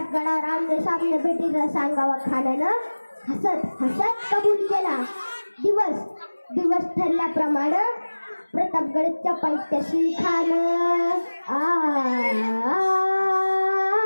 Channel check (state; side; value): inverted; both; correlation -1.00